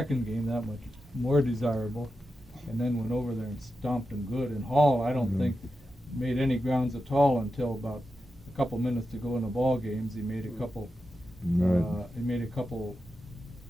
game that much more desirable. And then went over there and stomped them good. And Hall, I don't think made any grounds at all until about a couple minutes to go in the ball games. He made a couple. Right. He made a couple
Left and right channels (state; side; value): normal; both; correlation 0.90